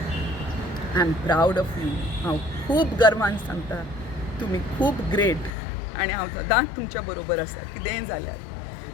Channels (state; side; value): drops out; right; at 5.6 s